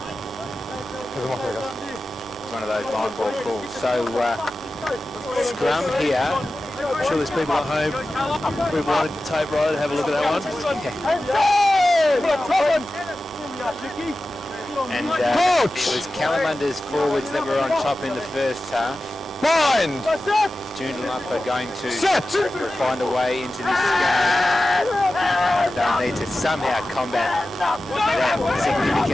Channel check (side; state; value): both; normal; correlation 0.94